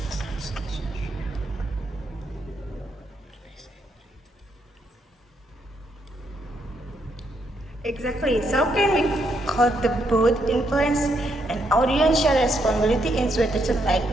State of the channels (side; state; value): both; normal; correlation 0.76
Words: Exactly. So can we contribute influence and audience share responsibility in situations like